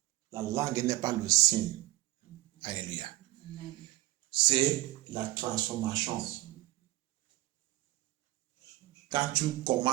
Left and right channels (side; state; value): left; quieter; 18.1 dB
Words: La langue n'est pas le signe. Alléluia. C'est la transformation. Quand tu